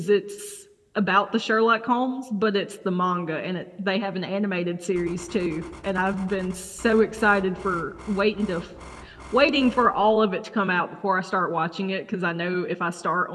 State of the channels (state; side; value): identical; both; correlation 1.00